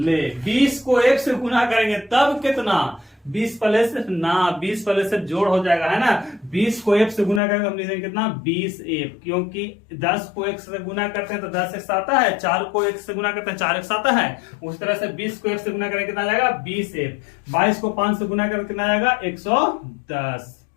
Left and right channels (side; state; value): right; drops out; at 7.4 s